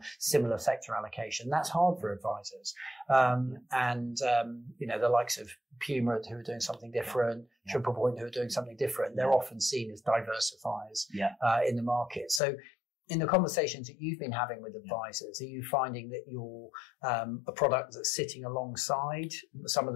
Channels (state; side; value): drops out; right; at 12.4 s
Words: similar sector allocation. That's hard for advisors. The likes of Puma, who are doing something different, Triple Point, who are doing something different, they're often seen as diversifiers in the market. So in the conversations that you've been having with advisors, are you finding that you're a product that's sitting alongside some of